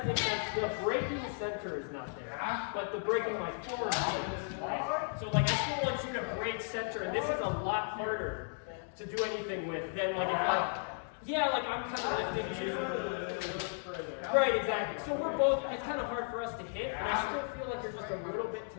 make sense? The breaking center is not there. But the breaking my forward is, right? So like I still want you to break center, and this is a lot harder to do anything with than like if like I'm kind of lifting too. Right, exactly. So we're both, it's kind of hard for us to hit, and I still feel like you're just a little bit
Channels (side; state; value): right; silent; 54 dB below the other